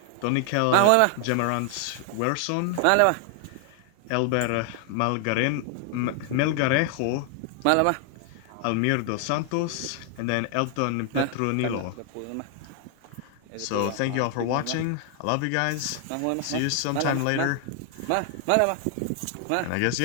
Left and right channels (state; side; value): different; both; correlation 0.00